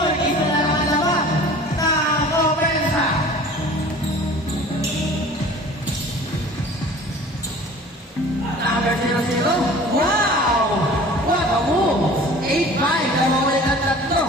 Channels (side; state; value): both; normal; correlation 0.44